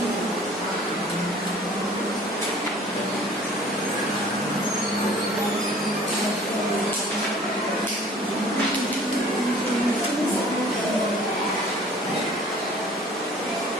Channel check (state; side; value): normal; both; correlation 0.50